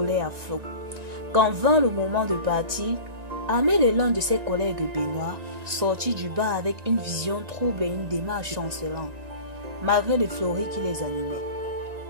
à flot. Quand vint le moment de partir, Amel et l'un de ses collègues Benoît sortit du bar avec une vision trouble et une démarche chancelante, malgré les fleuris qui les animaient.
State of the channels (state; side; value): late; left; 1.9 ms